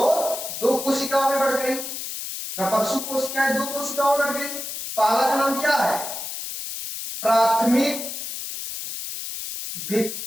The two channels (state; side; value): noise; left; hiss, 7 dB below the sound